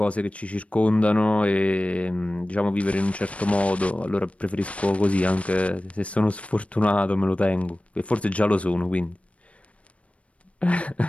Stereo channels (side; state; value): right; late; 0.064 ms